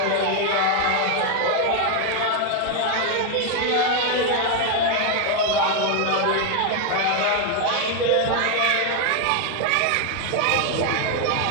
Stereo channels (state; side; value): different; both; correlation 0.01